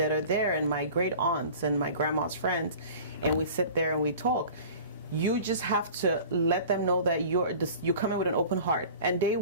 are there and my great aunts and my grandma's friends, and we sit there and we talk. You just have to let them know that you're coming with an open heart, and they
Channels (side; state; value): both; inverted; correlation -0.42